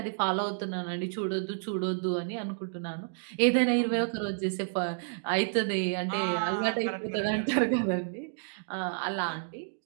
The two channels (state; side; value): silent; left; digital silence